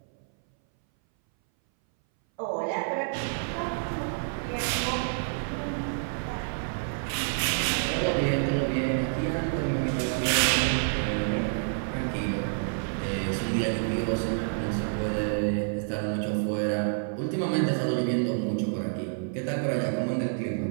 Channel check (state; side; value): silent; left; 59 dB below the other